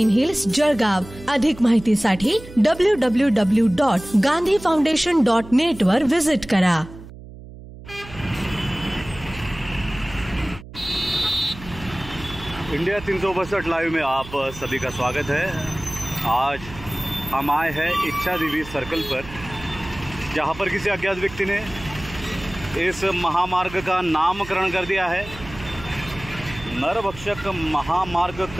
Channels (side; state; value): right; noise; hum, 16 dB below the sound